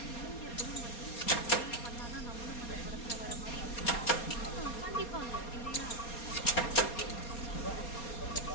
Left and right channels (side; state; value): right; late; 4.2 ms